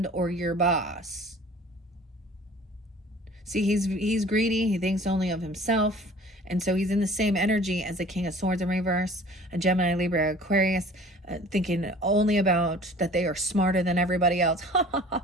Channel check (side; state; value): both; normal; correlation 0.47